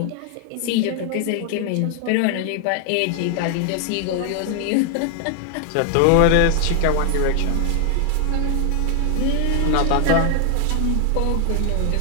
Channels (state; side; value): different; both; correlation 0.00